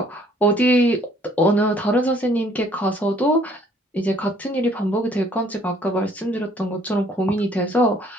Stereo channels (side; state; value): both; normal; correlation 0.60